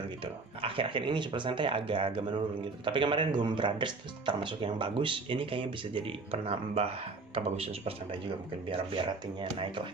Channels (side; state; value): left; quieter; 3.8 dB